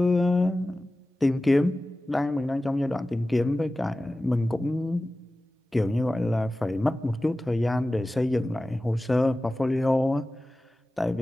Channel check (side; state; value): both; normal; correlation 0.96